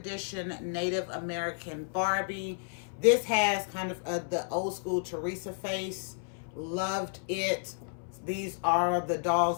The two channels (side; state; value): right; silent; 57 dB below the other